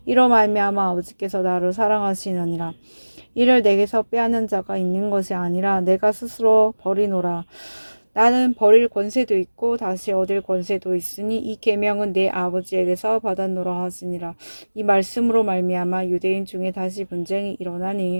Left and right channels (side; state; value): both; inverted; correlation -1.00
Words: 이로 말미암아 아버지께서 나를 사랑하시느니라. 이를 내게서 빼앗는 자가 있는 것이 아니라 내가 스스로 버리노라. 나는 버릴 권세도 있고 다시 얻을 권세도 있으니 이 계명은 내 아버지에게서 받았노라 하시니라. 이 말씀으로 말미암아 유대인 중에 다시 분쟁이